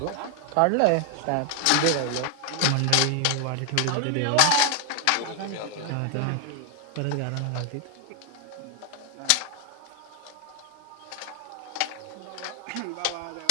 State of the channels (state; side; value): different; both; correlation 0.00